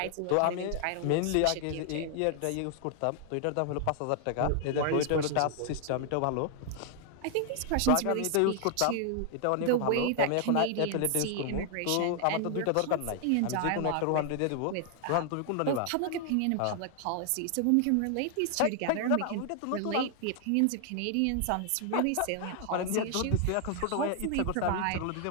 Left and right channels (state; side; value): different; both; correlation 0.00